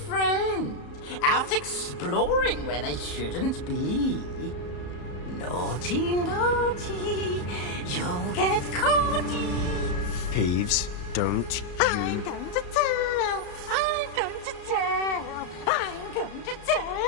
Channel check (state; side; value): late; right; 34 ms